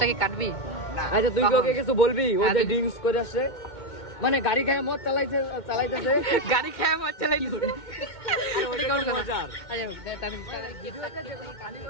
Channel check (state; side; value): late; right; 2.2 ms